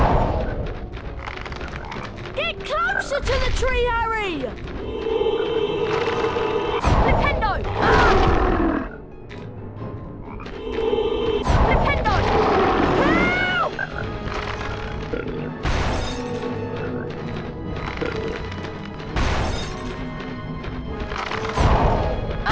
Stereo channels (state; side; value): identical; both; correlation 1.00